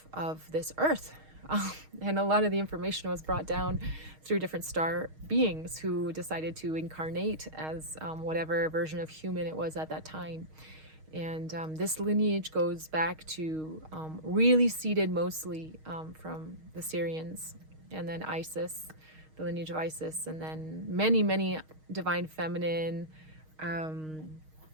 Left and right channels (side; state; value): left; late; 6.4 ms